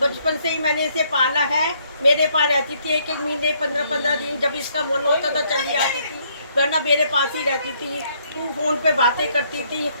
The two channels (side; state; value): both; inverted; correlation -0.68